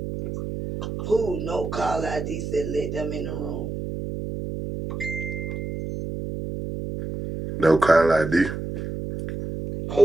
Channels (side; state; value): right; noise; hum, 6 dB below the sound